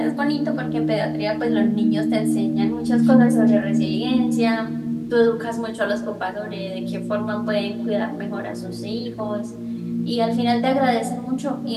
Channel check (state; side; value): identical; both; correlation 1.00